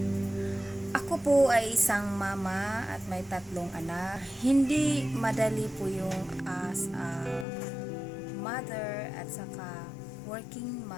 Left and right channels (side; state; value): right; drops out; at 7.5 s